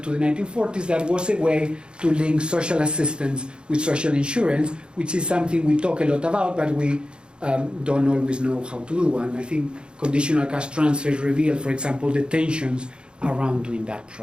to the 1940s, that was a way to link social assistance with social insurance, which is something we talk a lot about, but we don't always know how to do. And I think conditional cash transfers reveal, for example, the tensions around doing that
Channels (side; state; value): left; late; 0.052 ms